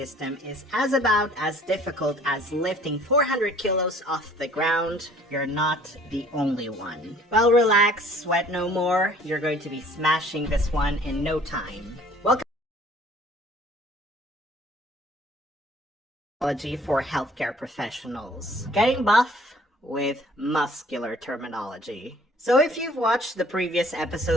is about as difficult as lifting 400 kilos off the ground, you're not the only one. Well, relax, sweat no more. You're going to be smashing this one in no time. Welcome to Terminology for Healthcare Professionals. Getting buff with muscular terminology. So if you've watched the previous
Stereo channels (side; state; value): both; normal; correlation 0.54